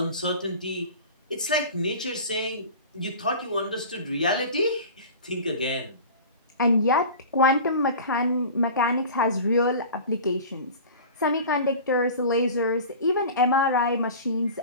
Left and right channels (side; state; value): both; inverted; correlation -0.37